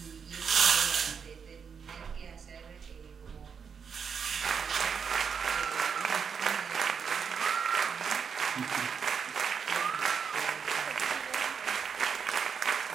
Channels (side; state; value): left; quieter; 6.5 dB